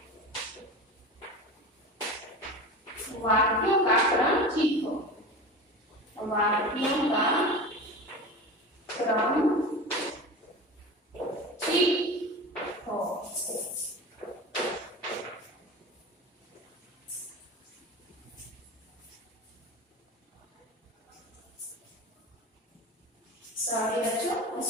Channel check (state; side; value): normal; both; correlation 0.30